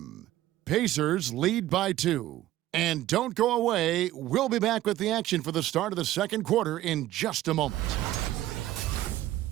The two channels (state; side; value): quieter; left; 14.7 dB